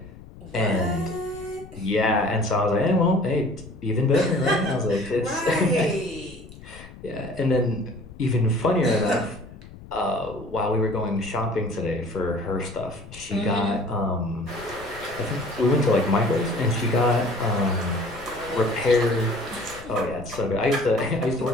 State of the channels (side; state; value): left; noise; rumble, 17 dB below the sound